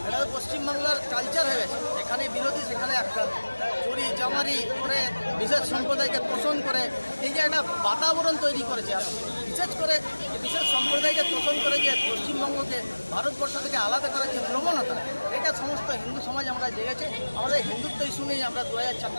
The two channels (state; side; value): inverted; both; correlation -1.00